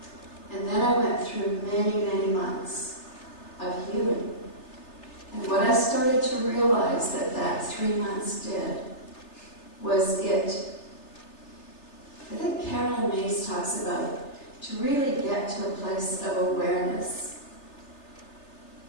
And then I went through many, many months of healing. And what I started to realize that 3 months did was I think Carolyn Mays talks about to really get to a place of awareness.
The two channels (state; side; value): late; right; 3.3 ms